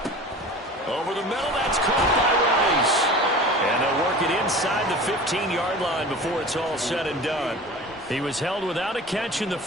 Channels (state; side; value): normal; both; correlation 0.38